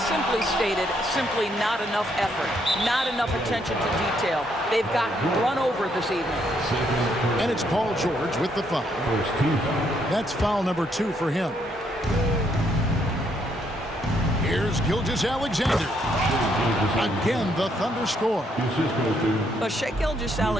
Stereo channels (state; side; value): normal; both; correlation 0.73